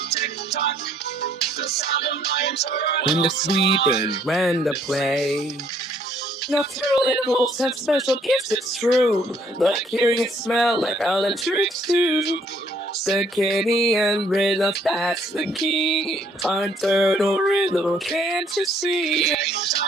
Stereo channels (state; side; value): normal; both; correlation 0.64